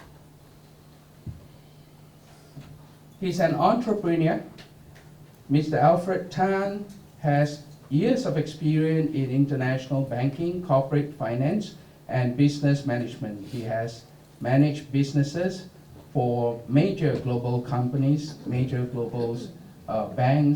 He's an entrepreneur. Mr. Alfred Tan has years of experience in international banking, corporate finance, and business management. He has managed businesses for major global companies, major global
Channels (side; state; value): both; identical; correlation 1.00